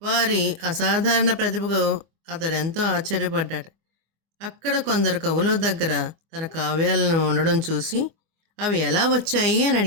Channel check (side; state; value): left; late; 24 ms